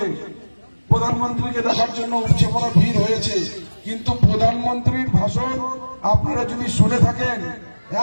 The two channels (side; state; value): both; inverted; correlation -1.00